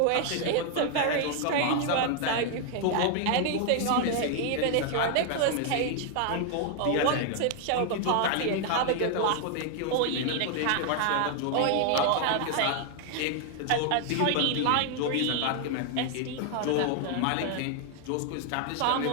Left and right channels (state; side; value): different; both; correlation 0.00